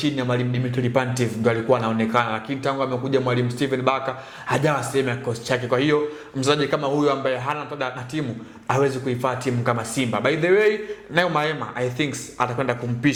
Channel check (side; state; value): both; identical; correlation 1.00